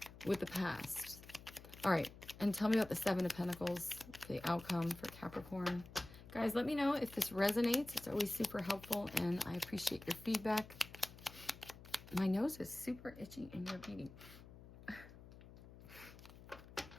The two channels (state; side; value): noise; left; hum, 17 dB below the sound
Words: with the past. All right. And tell me about the Seven of Pentacles, the outcome for Capricorn. Guys, let me know if this resonates. It's always super helpful, and I appreciate your feedback. My nose is super itchy in your reading.